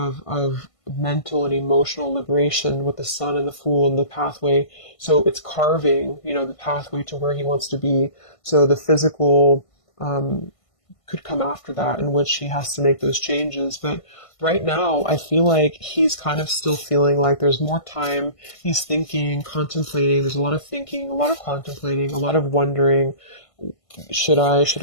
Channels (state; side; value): late; right; 1.5 ms